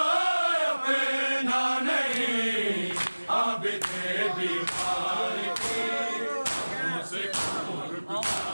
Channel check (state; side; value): inverted; both; correlation -1.00